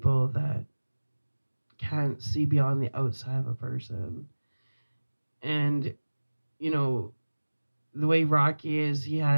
that can't see beyond the outside of a person. And, you know, the way Rocky is, he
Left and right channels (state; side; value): inverted; both; correlation -1.00